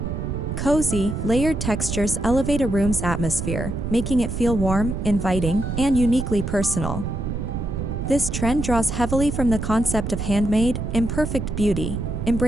Cozy, layered textures elevate a room's atmosphere, making it feel warm, inviting, and uniquely personal. This trend draws heavily from the concept of handmade, imperfect beauty,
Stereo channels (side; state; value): right; noise; rumble, 4 dB below the sound